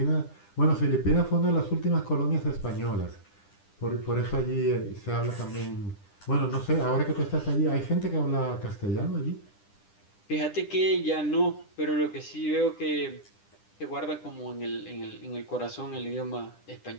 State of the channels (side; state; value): right; late; 10 ms